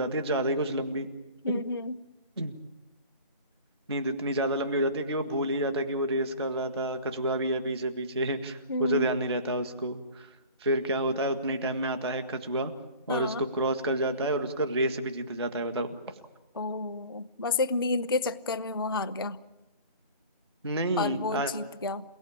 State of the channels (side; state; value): both; inverted; correlation -0.42